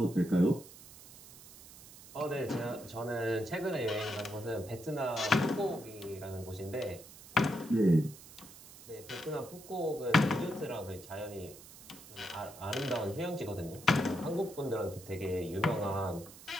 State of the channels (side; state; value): right; noise; hiss, 18 dB below the sound